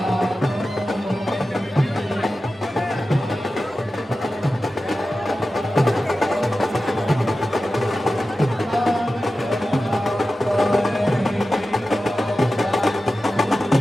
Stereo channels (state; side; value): normal; both; correlation 0.93